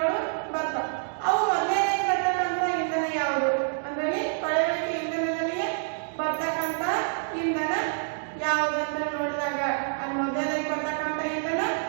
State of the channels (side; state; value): left; silent; digital silence